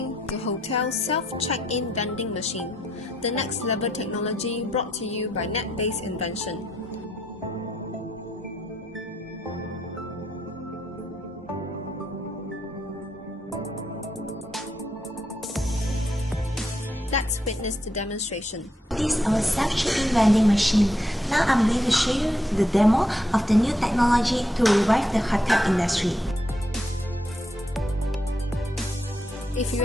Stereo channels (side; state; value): both; normal; correlation 0.78